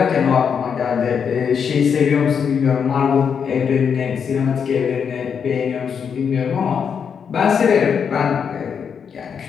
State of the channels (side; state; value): right; quieter; 6.9 dB